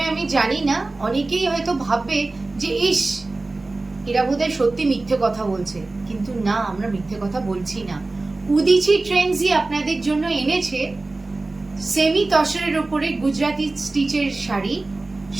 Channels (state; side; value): quieter; left; 3.2 dB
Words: আমি জানি না, অনেকেই হয়তো ভাববে যে ইস, এরা বোধহয় সত্যি মিথ্যে কথা বলছে, কিন্তু না, আমরা মিথ্যে কথা বলছি না। উদিচি ট্রেন্ডসই আপনাদের জন্য এনেছে সেমি তসরের উপরে গুজরাটি স্টিচের শাড়ি